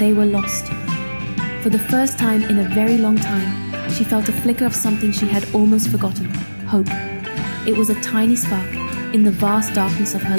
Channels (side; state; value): both; inverted; correlation -1.00